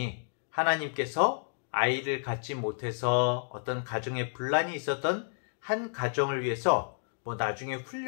하나님께서 아이를 갖지 못해서 어떤 가정에 분란이 있었던 한 가정을 위해서 나중에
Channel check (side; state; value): right; silent; digital silence